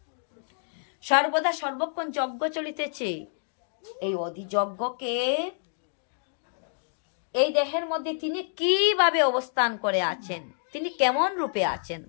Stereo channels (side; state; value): right; silent; digital silence